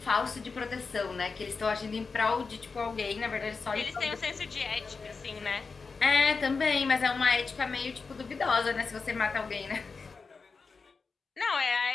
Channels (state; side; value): quieter; right; 4.7 dB